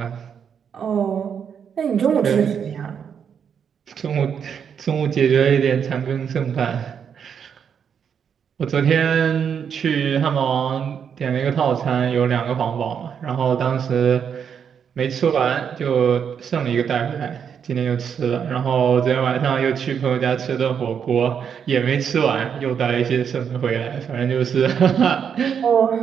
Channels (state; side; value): quieter; left; 7.5 dB